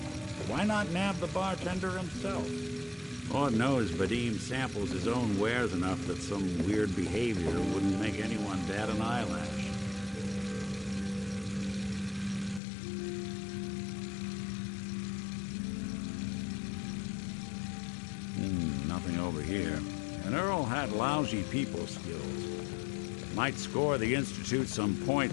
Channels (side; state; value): right; drops out; at 12.6 s